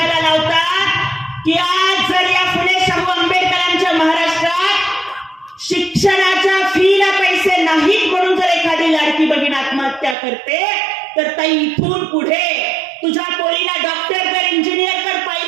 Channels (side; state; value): left; drops out; at 10.2 s